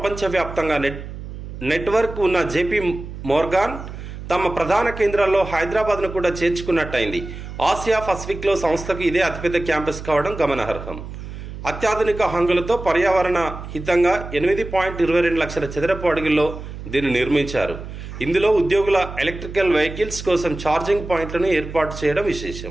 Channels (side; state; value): right; noise; hum, 10 dB below the sound